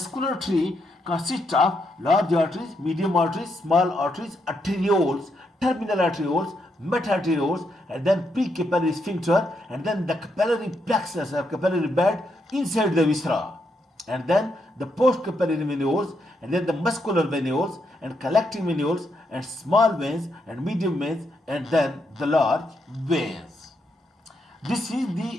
tree consists of large arteries, medium arteries, small arteries, arterioles, terminal arterioles, meta-arterioles, and then pre-capillary sphincter, and then the capillary plexus or capillary bed inside the viscera, and then the post-capillary venules, and then the muscular venules, and collecting venules, and small veins, and medium veins, and then the large veins. This is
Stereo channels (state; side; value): normal; both; correlation 0.79